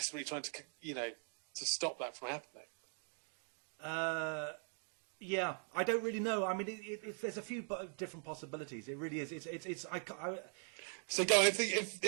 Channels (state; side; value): silent; left; 50 dB below the other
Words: trying to, to stop that from happening. Yeah, I don't really know. I mean, there's a few different possibilities. It really is. So, go on,